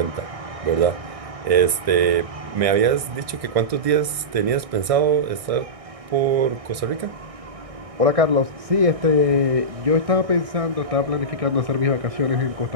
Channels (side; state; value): left; late; 1.6 ms